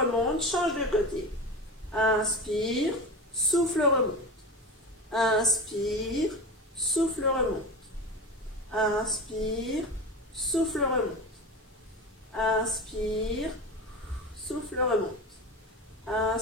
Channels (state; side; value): normal; both; correlation 0.27